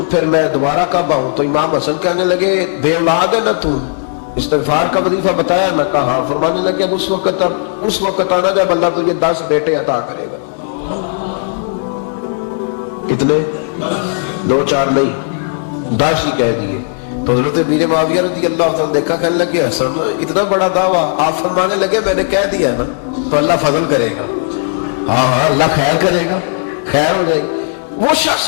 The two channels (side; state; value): right; silent; digital silence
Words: پھر میں دوبارہ کب آؤں؟ تو امام حسن کہنے لگے بے اولاد ہے نا تو، استغفار کا وظیفہ بتایا؟ میں کہا ہاں۔ فرمانے لگے اب اس وقت آنا جب اللہ تجھے 10 بیٹے عطا کرے گا۔ کتنے؟ 2 4 نہیں، 10 ہی کہہ دیے۔ تو حضرت امیر معاویہ رضی اللہ عنہ دیکھا، کہنے لگے حسن اتنا بڑا دعویٰ؟ آپ فرمانے لگے میں نے کہہ دیا نا تو اللہ فضل کرے گا، ہاں ہاں اللہ خیر کرے گا، خیر ہو جائے گی۔ وہ شخص